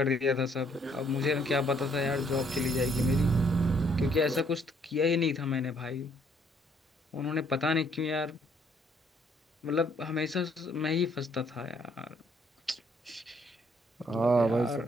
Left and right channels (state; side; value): normal; both; correlation 0.67